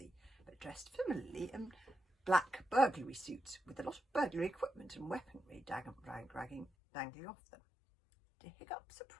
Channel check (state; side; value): drops out; right; at 6.7 s